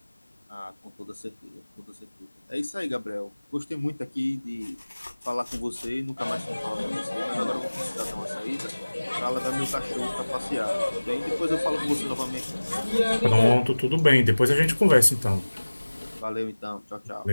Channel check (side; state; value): both; inverted; correlation -1.00